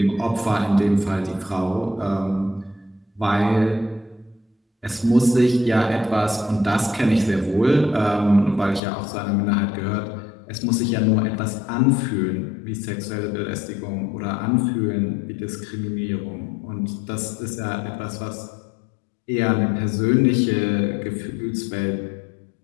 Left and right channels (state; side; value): drops out; right; at 8.8 s